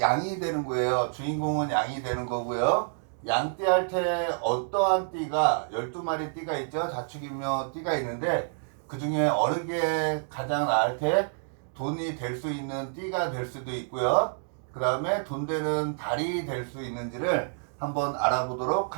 되는 거예요. 주인공은 양이 되는 거고요. 양띠 할 때 어떠한 띠가 12마리 띠가 있죠. 자축인묘 띠가 있는데 그 중에 어느 게 가장 나을 때 돈이 될 수 있는 띠가 될 수도 있고요. 그 다음에 돈 되는 달이 될 수 있는지를 한번 알아보도록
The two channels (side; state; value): left; silent; digital silence